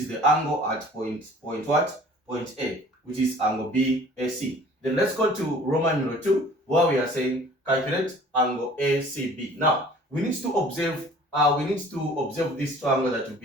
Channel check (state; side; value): normal; both; correlation 0.50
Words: the angle at point what? Point A, which is angle BAC. Then let's go to Roman numeral 2, where we are saying calculate angle ACB. Now we need to observe this triangle that we've